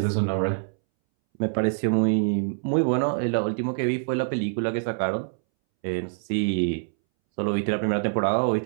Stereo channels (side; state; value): left; silent; 62 dB below the other